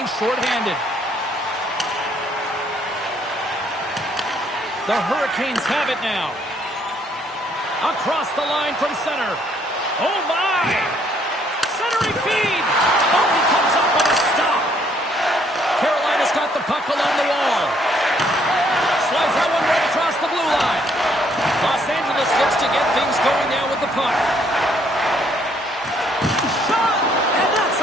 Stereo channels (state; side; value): normal; both; correlation 0.67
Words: shorthanded. The Hurricanes have it now. Across the line from center. Oh, my! Centering feed! Oh, he comes up with a stop. Carolina's got the puck along the wall. Slides that one right across the blue line. Los Angeles looks to get things going now with the puck. Shot! And that's